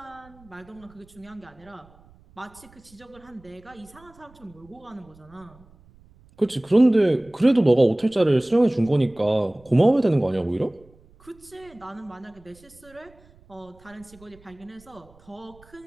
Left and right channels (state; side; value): noise; right; rumble, 27 dB below the sound